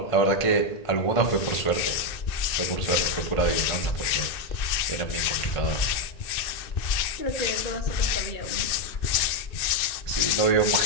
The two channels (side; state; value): right; late; 2.6 ms